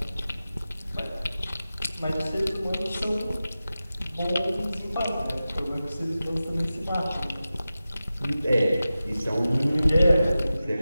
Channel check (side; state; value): both; inverted; correlation -0.94